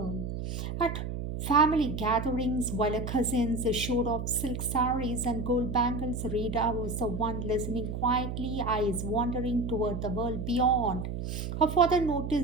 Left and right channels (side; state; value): right; noise; hum, 5 dB below the sound